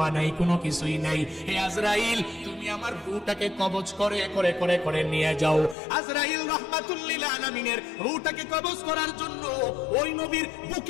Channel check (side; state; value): right; drops out; at 5.8 s